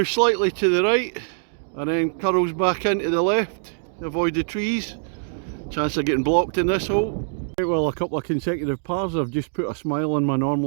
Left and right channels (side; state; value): left; silent; digital silence